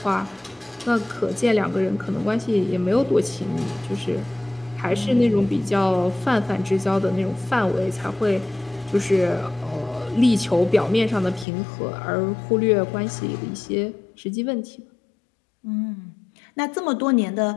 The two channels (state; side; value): drops out; right; at 11.5 s